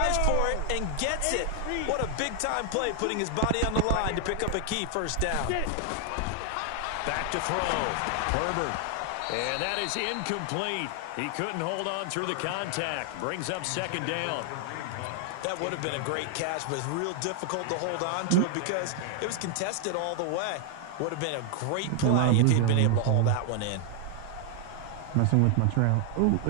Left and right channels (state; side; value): different; both; correlation 0.00